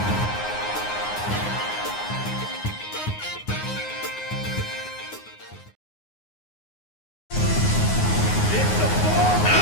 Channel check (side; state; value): right; late; 9.6 ms